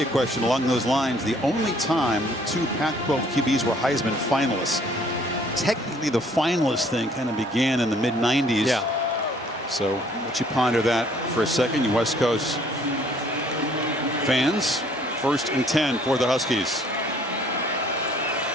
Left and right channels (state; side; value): normal; both; correlation 0.60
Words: question along those lines: the only time 2 Pac-12 QBs were Heisman finalists. Technically, the finalist thing kind of began in the mid-90s. Yeah. So let you ponder that for a second, you West Coast fans. 1st and 10 for the Huskies.